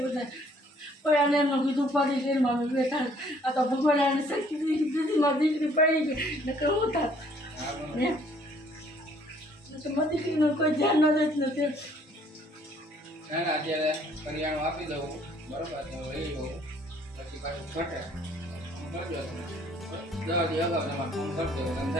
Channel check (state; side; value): normal; both; correlation 0.61